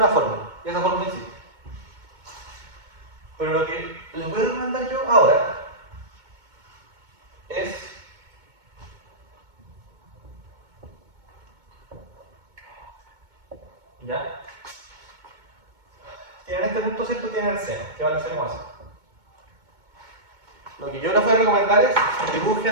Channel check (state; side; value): late; left; 2.2 ms